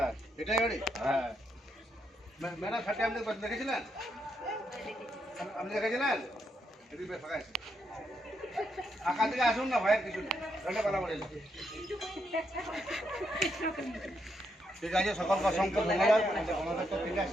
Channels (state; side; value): normal; both; correlation 0.79